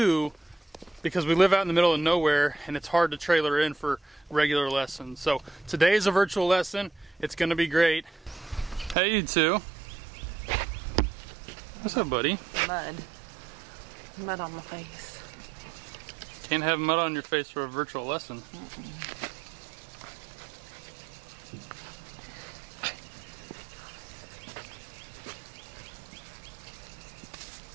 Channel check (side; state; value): left; drops out; at 9.0 s